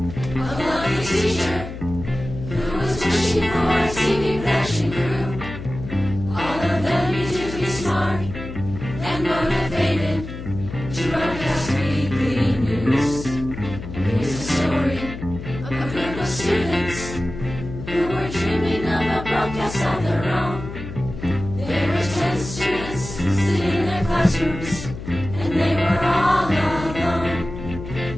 a lovely teacher who was wishing for a TV production crew. All of them need to be smart and motivated to broadcast weekly news. Here's a story of a group of students who were dreaming of a broadcast of their own. There were 10 students sitting in their classrooms, and they were all alone.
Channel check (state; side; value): noise; left; hum, 10 dB below the sound